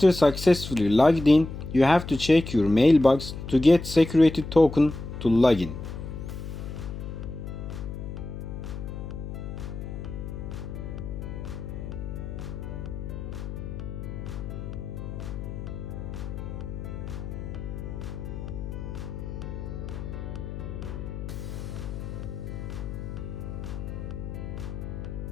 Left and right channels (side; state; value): left; noise; hum, 7 dB below the sound